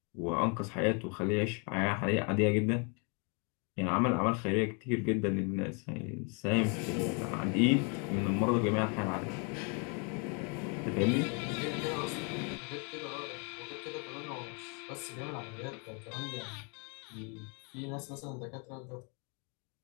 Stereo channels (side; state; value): right; quieter; 35.8 dB